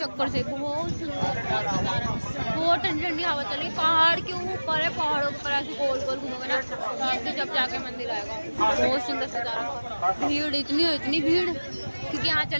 से बहुत सुंदर, बहुत ठंडी ठंडी हवा चल रही, पहाड़ के ऊपर है, पहाड़ों के ऊपर ऐसे गोल गोल घूमोगे ना तो जब जाके मंदिर आएगा। बहुत सुंदर सजा रहा, भीड़ इतनी भीड़, क्योंकि यहाँ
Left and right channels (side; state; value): both; inverted; correlation -1.00